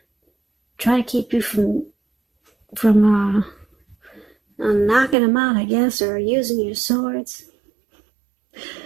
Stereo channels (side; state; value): left; drops out; at 5.2 s